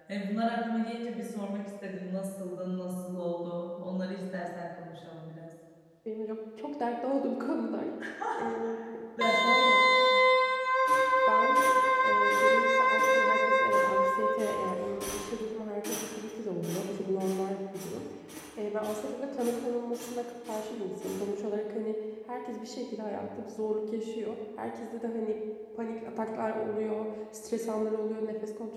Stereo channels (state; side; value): identical; both; correlation 1.00